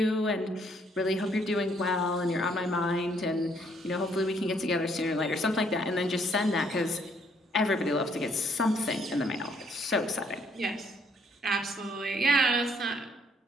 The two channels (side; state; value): both; normal; correlation 0.67